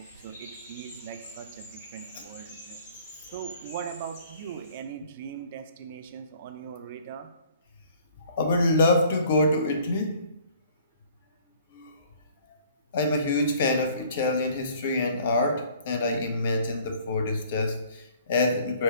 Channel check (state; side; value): inverted; both; correlation -0.55